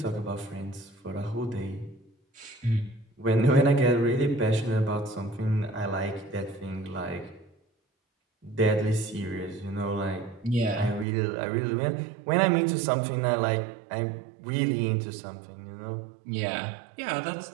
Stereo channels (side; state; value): left; drops out; at 11.1 s